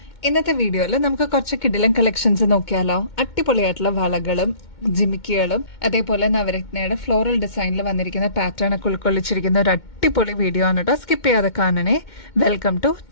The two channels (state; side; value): late; right; 2.2 ms